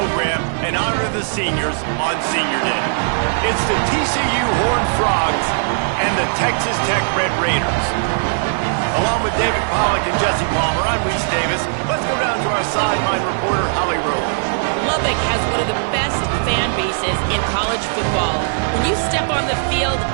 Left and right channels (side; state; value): left; silent; digital silence